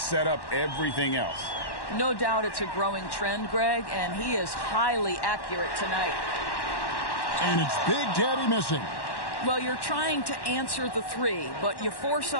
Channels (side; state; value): right; late; 1.1 ms